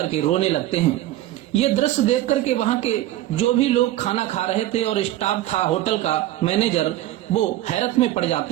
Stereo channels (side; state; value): left; quieter; 14.4 dB